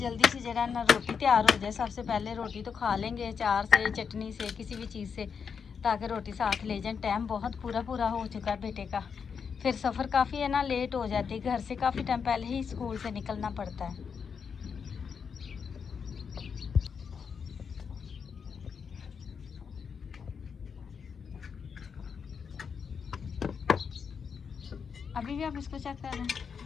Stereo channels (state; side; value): quieter; right; 6.4 dB